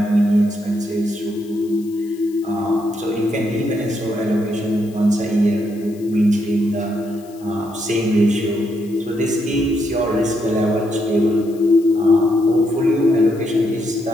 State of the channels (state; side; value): noise; left; hiss, 25 dB below the sound